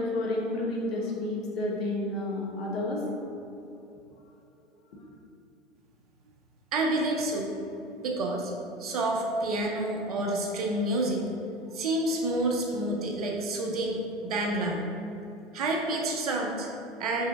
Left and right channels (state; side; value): normal; both; correlation 0.32